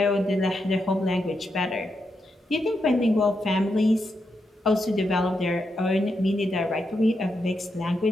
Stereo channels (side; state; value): both; normal; correlation 0.84